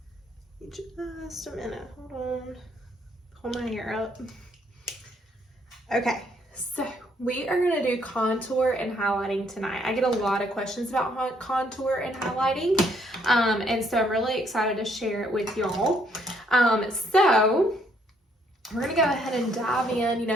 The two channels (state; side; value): normal; both; correlation 0.68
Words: Just a minute. Hold on. Hold my hair up. Okay, so we are going to do contour and highlighting tonight. I get a lot of questions about contour and highlighting, and so I'm really excited to share it with y'all. So we're going to go ahead and dive in. You